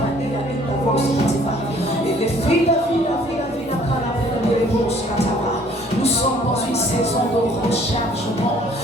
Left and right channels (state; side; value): normal; both; correlation 0.58